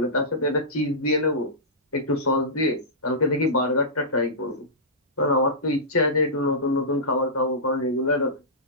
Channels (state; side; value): normal; both; correlation -0.18